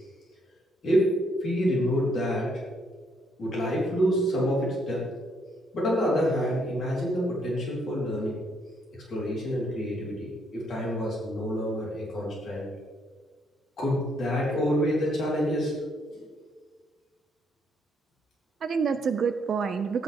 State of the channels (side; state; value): both; normal; correlation 0.71